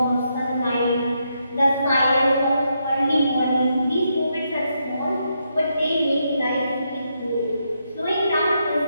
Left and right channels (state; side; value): inverted; both; correlation -0.80